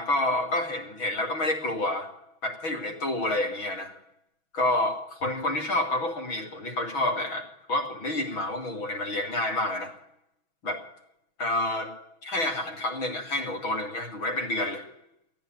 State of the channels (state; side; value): late; right; 6.2 ms